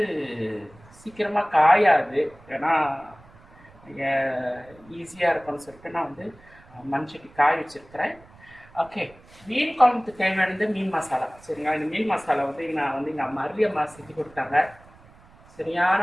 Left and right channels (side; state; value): right; noise; rumble, 25 dB below the sound